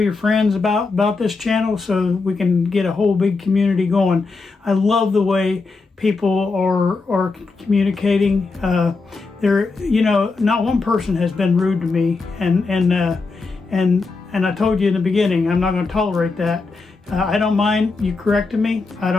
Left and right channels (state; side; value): quieter; right; 4.0 dB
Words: friends about this channel, so we can get a whole big community going. I love the way people are communicating. Not one person has been rude to me, and I told you in the beginning, I'm not going to tolerate that. I don't mind you correcting me. I